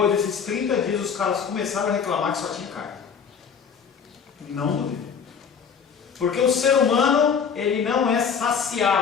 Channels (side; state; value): right; quieter; 6.7 dB